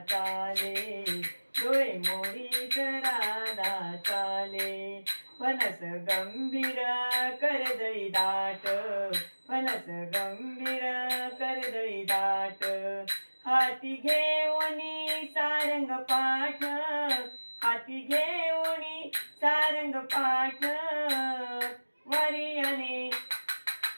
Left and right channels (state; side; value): inverted; both; correlation -1.00